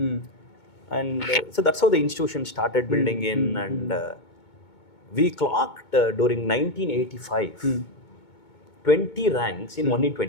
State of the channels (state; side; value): late; right; 2.2 ms